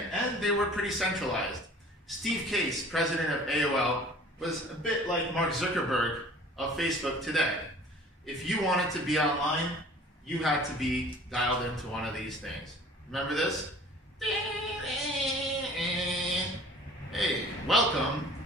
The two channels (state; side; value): normal; both; correlation 0.48